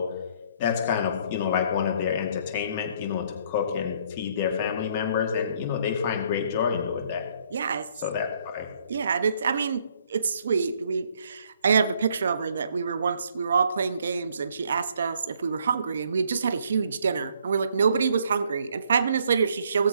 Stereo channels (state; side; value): inverted; both; correlation -0.65